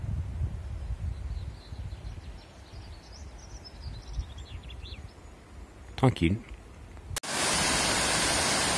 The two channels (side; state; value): both; identical; correlation 1.00